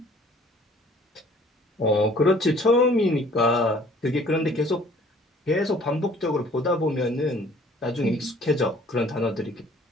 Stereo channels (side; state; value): both; normal; correlation 0.55